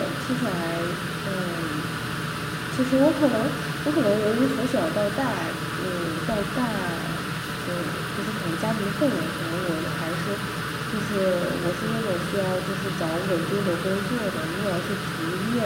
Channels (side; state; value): both; identical; correlation 1.00